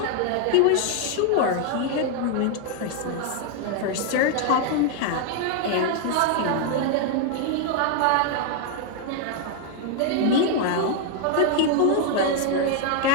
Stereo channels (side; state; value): both; different; correlation 0.00